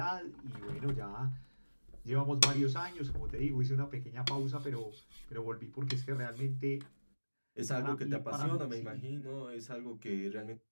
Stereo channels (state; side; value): inverted; both; correlation -1.00